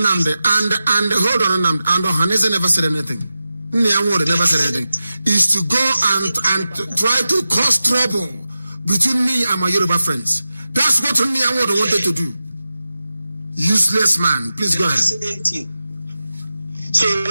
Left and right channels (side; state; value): both; inverted; correlation -0.93